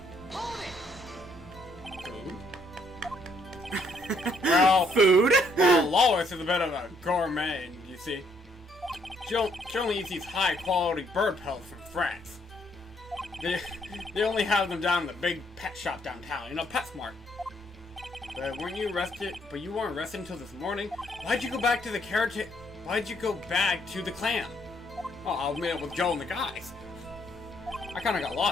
Food? Well, Food? well, Lois is a bit of a gourmet, you see. She only eats these high-quality bird pelts from France. They only have them down in the big pet shop downtown, you know, PetSmart. But weren't you arrested? But you weren't arrested until this morning. Why'd you go back to the carriage? Why'd you go back to the clan? Oh, I was meet up with Joe and the guys. I kind of got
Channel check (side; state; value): both; normal; correlation 0.69